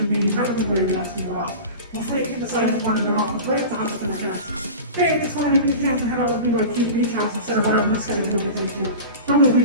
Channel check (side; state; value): both; inverted; correlation -0.33